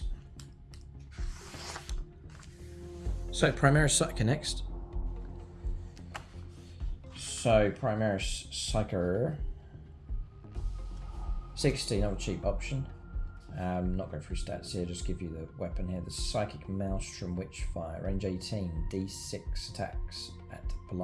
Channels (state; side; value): identical; both; correlation 1.00